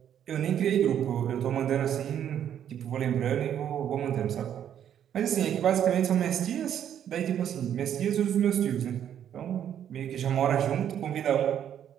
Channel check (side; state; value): left; quieter; 9.7 dB